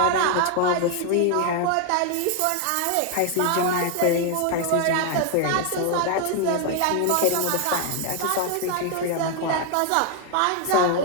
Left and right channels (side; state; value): both; different; correlation 0.00